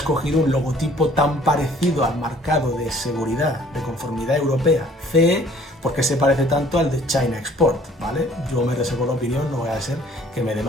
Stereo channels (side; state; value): both; normal; correlation 0.56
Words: un logotipo tan parecido al marcado de seguridad de conformidad europea CE, por qué se parece tanto al de China Export, ¿vale? Yo me reservo la opinión, no voy a ser que me